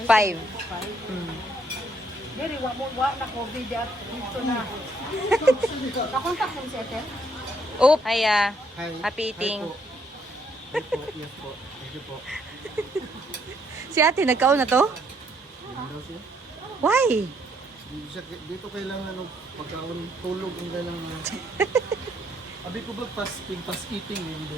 5. Diri wa na COVID at dito na. Nakontak mo si Ethel? Oh, hiya. Happy eating. Hi po. Yes po. Thank you po. Si ate, nagkaon na to? Why? Dito kailangan ng pagkaon, tulog ang kailangan. Abi ko ba fasting, fast eating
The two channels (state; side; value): normal; both; correlation 0.70